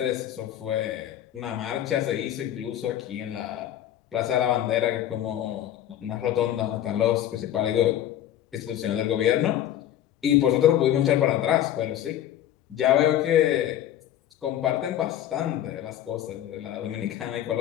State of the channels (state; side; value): quieter; right; 11.7 dB